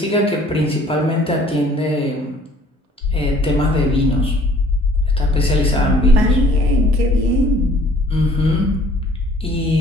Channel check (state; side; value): normal; both; correlation 0.56